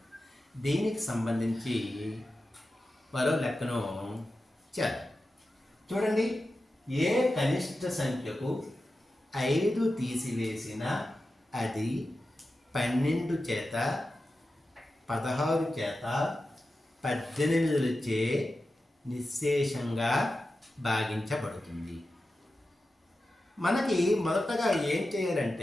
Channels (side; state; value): both; normal; correlation 0.92